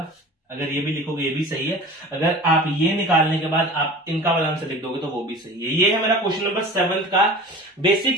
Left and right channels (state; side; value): normal; both; correlation 0.39